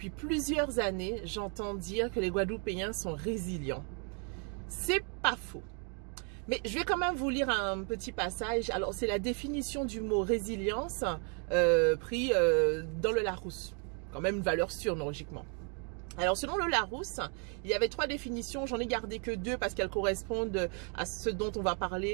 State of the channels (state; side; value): quieter; left; 39.4 dB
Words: plusieurs années, j'entends dire que les Guadeloupéens sont résilients. C'est pas faux. Mais je vais quand même vous lire un petit passage. Alors, c'est la définition du mot résilience pris dans le Larousse. Quand même une valeur sûre, logiquement. Alors, selon le Larousse, il y avait 3 définitions. J'en ai gardé que 2 parce qu'elles correspondent à ce dont on va